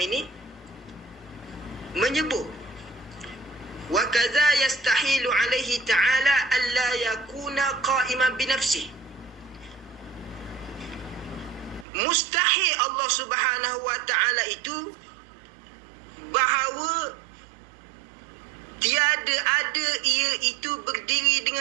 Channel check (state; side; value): drops out; left; at 11.9 s